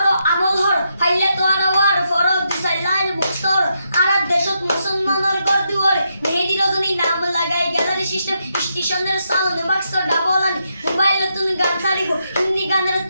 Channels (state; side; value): inverted; both; correlation -0.82